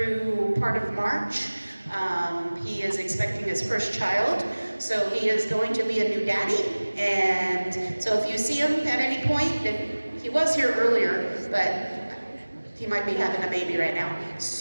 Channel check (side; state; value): both; inverted; correlation -1.00